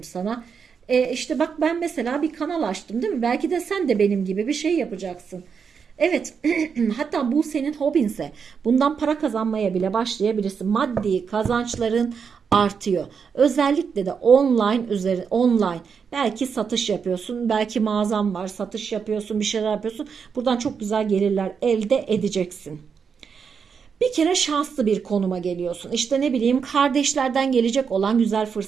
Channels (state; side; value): quieter; left; 6.3 dB